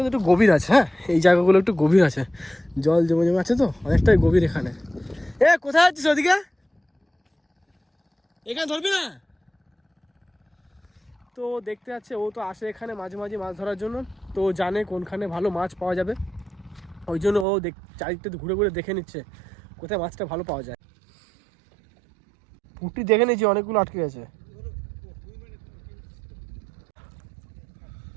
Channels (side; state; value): left; drops out; at 17.4 s